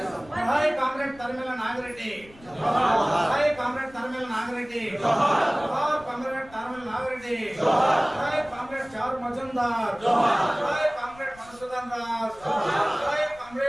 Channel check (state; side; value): noise; left; rumble, 23 dB below the sound